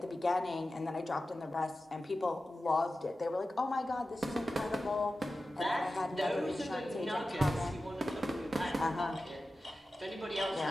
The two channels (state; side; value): normal; both; correlation 0.94